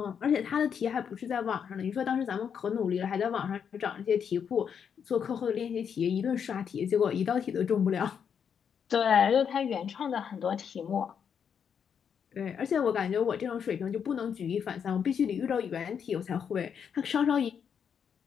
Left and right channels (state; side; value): quieter; right; 7.5 dB